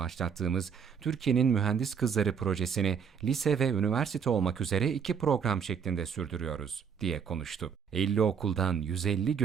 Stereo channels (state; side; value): quieter; left; 7.0 dB